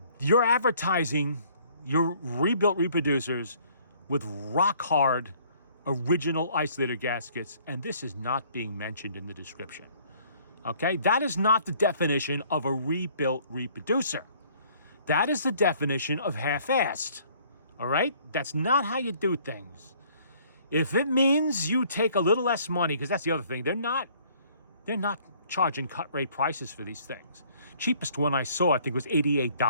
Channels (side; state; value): both; inverted; correlation -0.59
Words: You're advertising your rebuilt reproducers with rock hard original isolator gaskets, and this is not being mentioned in the description. Okay, that is not the definition of a rebuilt reproducer. That is the definition of half-assed. All right, that's not how you do things. If it means you take a little less money, because that's the other thing, they're not charging cut rate prices for these things. Cheapest one I saw, I think, was